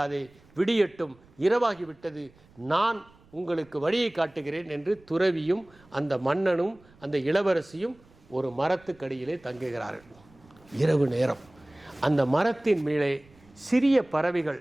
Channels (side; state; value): right; noise; rumble, 28 dB below the sound